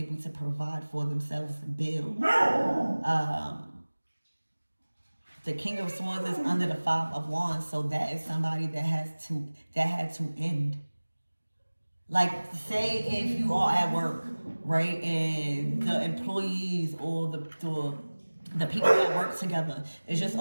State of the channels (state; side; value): inverted; both; correlation -1.00